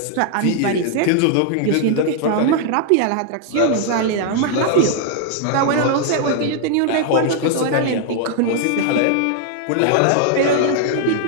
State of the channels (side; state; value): both; different; correlation 0.00